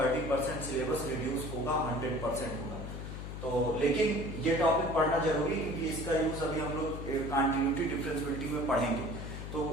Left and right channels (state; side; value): noise; left; hum, 7 dB below the sound